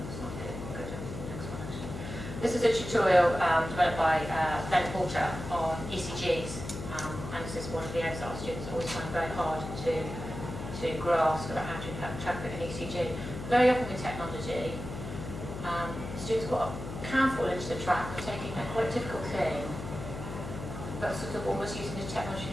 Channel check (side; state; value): left; noise; hum, 8 dB below the sound